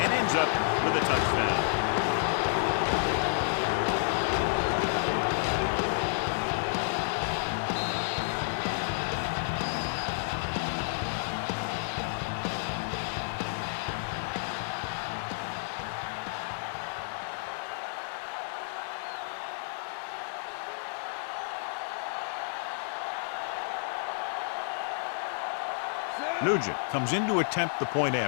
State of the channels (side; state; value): right; silent; 57 dB below the other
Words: and ends up with a touchdown. Nugent comes in to attempt the point